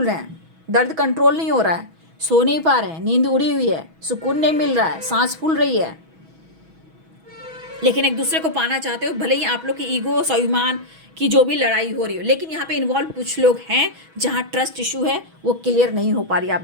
रहे हैं, दर्द कंट्रोल नहीं हो रहा है, सो नहीं पा रहे हैं, नींद उड़ी हुई है, सुकून नहीं मिल रहा है, सांस फूल रही है। लेकिन एक दूसरे को पाना चाहते हो, भले ही आप लोग की ईगो, स्वाभिमान की जो भी लड़ाई हो रही हो, लेकिन यहाँ पे इन्वॉल्व कुछ लोग हैं जहाँ ट्रस्ट इशू है, वो क्लियर नहीं हो पा रही आप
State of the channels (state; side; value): late; left; 6.2 ms